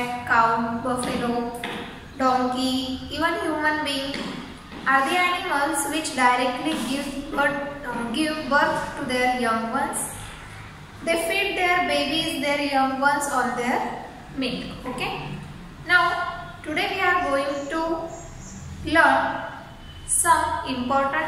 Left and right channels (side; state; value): both; identical; correlation 1.00